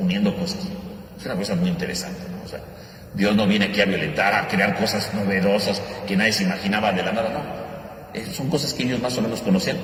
cosas. Es una cosa muy interesante, ¿no? O sea, Dios no viene aquí a violentar, a crear cosas novedosas que nadie se imaginaba de la nada, no. Son cosas que ellos más o menos conocían,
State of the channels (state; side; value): identical; both; correlation 1.00